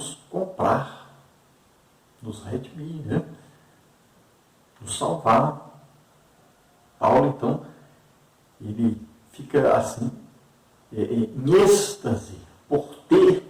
comprar, nos redimir, né? Nos salvar. Paulo, então, ele fica assim, em êxtase por ter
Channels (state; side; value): identical; both; correlation 1.00